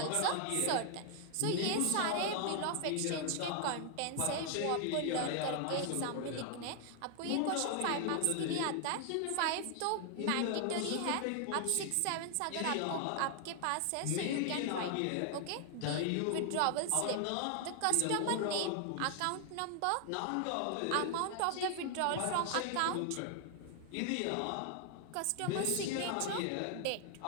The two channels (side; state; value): both; different; correlation 0.00